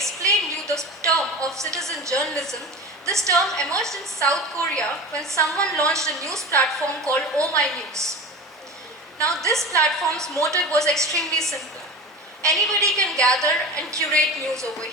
you the term of citizen journalism, this term emerged in South Korea when someone launched a news platform called Oh My News. Now, this platform's motive was extremely simple. Anybody can gather and curate news over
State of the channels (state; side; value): normal; both; correlation 0.30